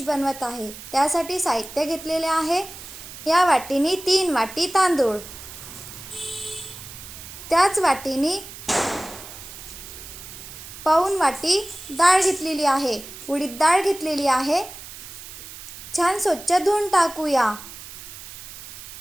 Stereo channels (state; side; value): noise; right; hiss, 14 dB below the sound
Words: बनवत आहे। त्यासाठी साहित्य घेतलेले आहे। या वाटीने 3 वाटी तांदूळ, त्याच वाटीने पाऊण वाटी डाळ घेतलेली आहे। उडीद डाळ घेतलेली आहे। छान स्वच्छ धुवून टाकूया।